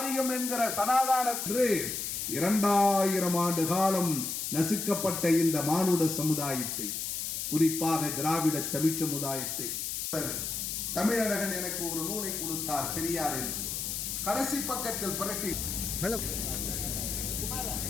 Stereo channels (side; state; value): left; noise; hiss, 3 dB below the sound